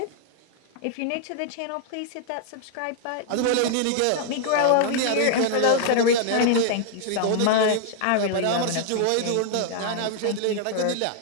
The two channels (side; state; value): both; different; correlation 0.00